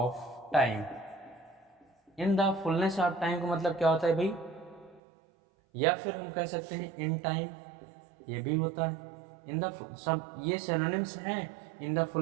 time. In the fullness of time का मतलब क्या होता है भाई? या फिर हम कह सकते हैं इन टाइम, ये भी होता है। इन द सब ये सिनोनिम्स हैं, in the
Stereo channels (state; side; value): drops out; left; at 5.0 s